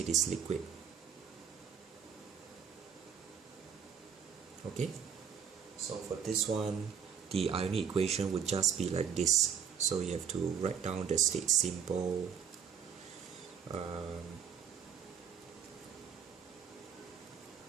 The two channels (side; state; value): left; quieter; 7.8 dB